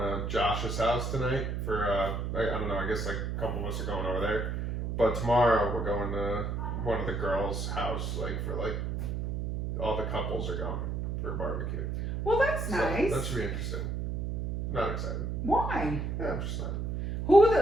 Josh's house tonight for I don't know. I guess like a couple of us are going over there. But tomorrow we're going to one of the girls' house, like for like all the couples are going for a barbecue. Well, that's nice. So that should be interesting. Not excited. Why? Yeah, I'm just not.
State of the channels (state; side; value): noise; right; hum, 2 dB below the sound